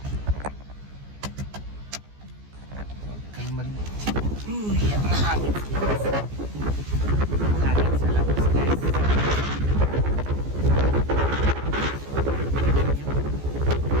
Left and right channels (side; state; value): left; late; 14 ms